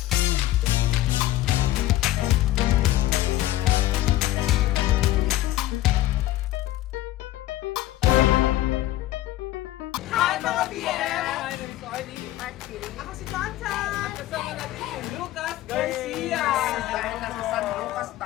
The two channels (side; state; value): right; quieter; 15.2 dB